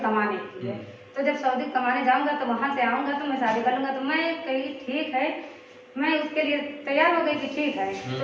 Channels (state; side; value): identical; both; correlation 1.00